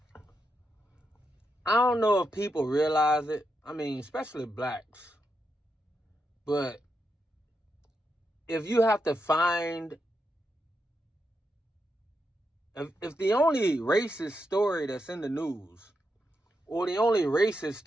I don't know if people realize it. I mean, especially blacks. But if you have to find, if the only racist story that's in the news, or the only racist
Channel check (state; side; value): normal; both; correlation 0.84